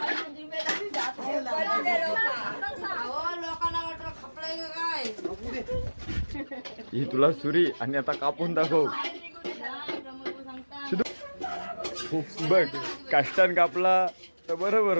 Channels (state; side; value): inverted; both; correlation -1.00